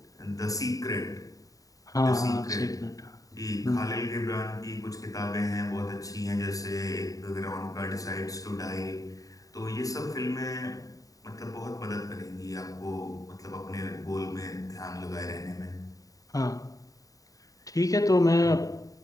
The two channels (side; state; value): right; late; 0.17 ms